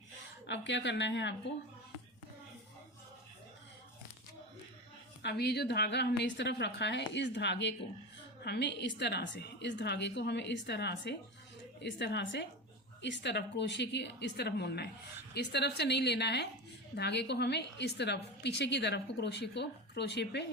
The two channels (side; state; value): both; normal; correlation 0.22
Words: अब क्या करना है आपको, अब ये जो धागा हमने इस तरफ रखा है, इस धागे को हमें इस तरह से, इस धागे को हमें इस तरह से इस तरफ क्रोशिया की इस तरफ मोड़ना है। इस तरफ से नहीं लेना है धागे को, हमें इस तरफ पीछे की तरफ को क्रोशिया पे